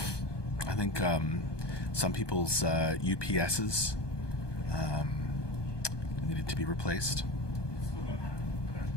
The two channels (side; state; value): right; late; 1.2 ms